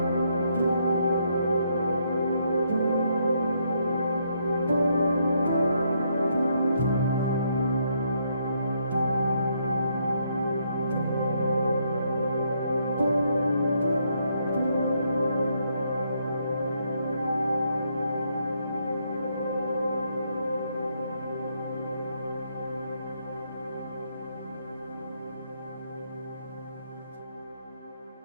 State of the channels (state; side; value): inverted; both; correlation -0.74